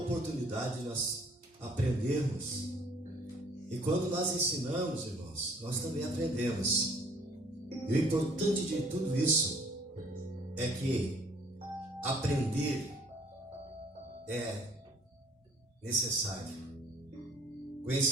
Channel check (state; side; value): normal; both; correlation 0.58